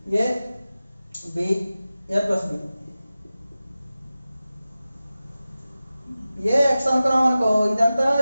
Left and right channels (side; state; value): both; inverted; correlation -0.95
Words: A B A plus B A X అనుకున్నాం అనుకో ఇదంతా